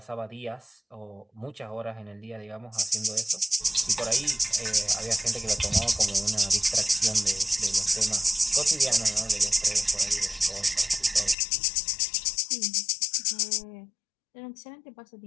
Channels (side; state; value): right; drops out; at 11.4 s